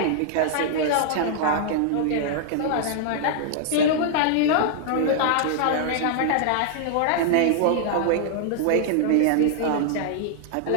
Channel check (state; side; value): different; both; correlation -0.01